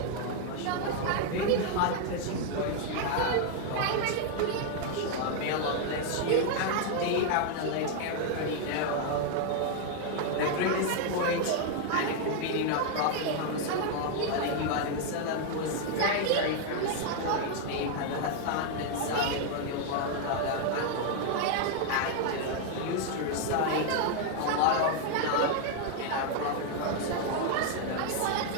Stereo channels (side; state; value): both; different; correlation 0.00